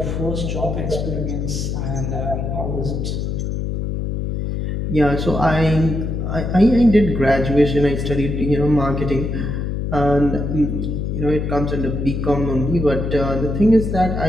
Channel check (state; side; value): noise; left; hum, 2 dB below the sound